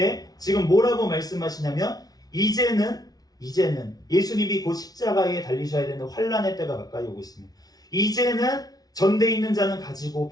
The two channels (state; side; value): late; right; 0.19 ms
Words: 지금 뭐라고 말씀하시냐면 이제는 예수님이 곧 십자가에 달리셔야 되는 환란의 때가 가까이 오고 있습니다. 이제는 전대 있는 자는 가지고